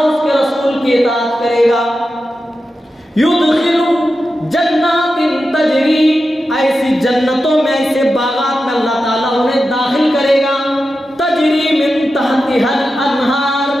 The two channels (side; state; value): both; normal; correlation 0.91